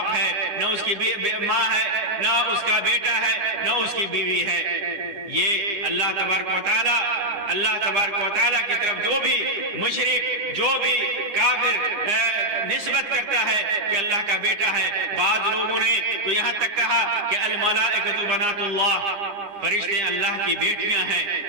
ہے، نہ اس کی ماں ہے، نہ اس کا بیٹا ہے، نہ اس کی بیوی ہے۔ یہ اللہ تبارک و تعالیٰ کی طرف جو بھی مشرک، جو بھی کافر نسبت کرتا ہے کہ اللہ کا بیٹا ہے، بعض لوگوں نے تو یہاں تک کہا کہ الملائکۃ بنات اللہ، فرشتے اللہ کی بیٹیاں ہیں،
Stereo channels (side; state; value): left; late; 9.7 ms